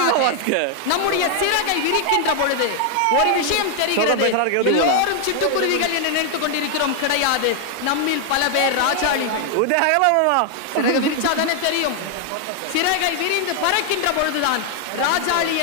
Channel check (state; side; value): different; both; correlation 0.00